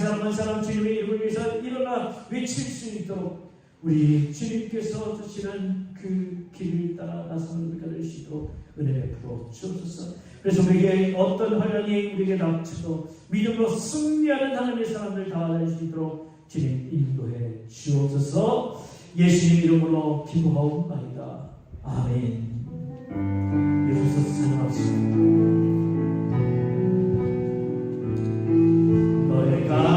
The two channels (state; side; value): identical; both; correlation 1.00